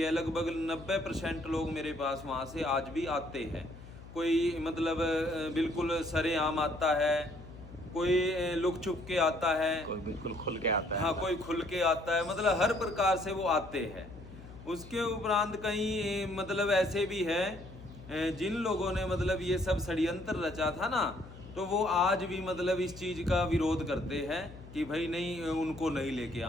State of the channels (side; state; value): left; noise; hum, 16 dB below the sound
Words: लगभग 90% लोग मेरे पास वहाँ से आज भी आते हैं। कोई मतलब बिल्कुल सरेआम आता है, कोई लुक छुप के आता है, कोई बिल्कुल खुल के आता है। हाँ कोई खुल के आता है, मतलब हर प्रकार से वो आते हैं। उसके उपरांत कहीं मतलब ऐसे भी है जिन लोगों ने मतलब ये सब षड्यंत्र रचा था ना, तो वो आज भी मतलब इस चीज़ का विरोध करते हैं कि भाई नहीं, उनको नहीं लेके